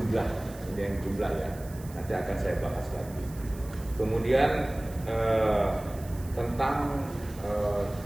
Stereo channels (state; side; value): noise; right; hiss, 20 dB below the sound